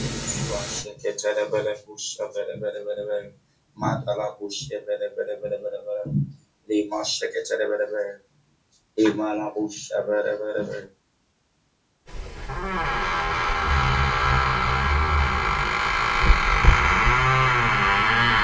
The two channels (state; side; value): identical; both; correlation 1.00